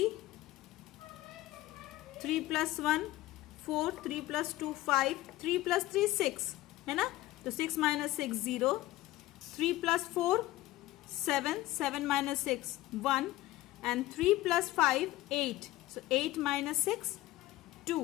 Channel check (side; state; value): right; quieter; 16.8 dB